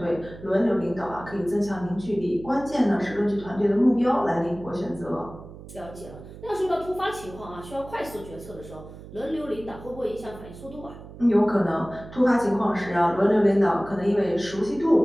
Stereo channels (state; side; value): noise; right; hum, 16 dB below the sound